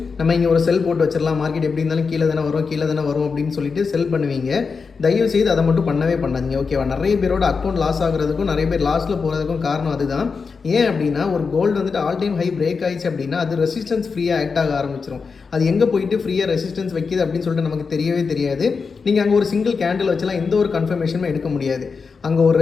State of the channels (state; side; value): quieter; right; 5.1 dB